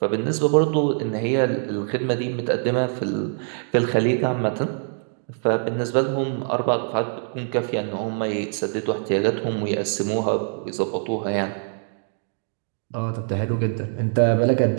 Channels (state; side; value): silent; left; digital silence